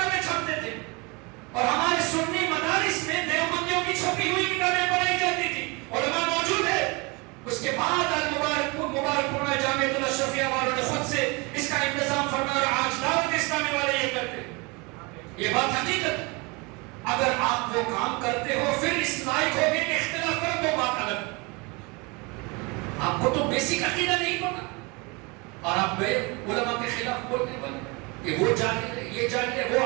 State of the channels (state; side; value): quieter; left; 27.8 dB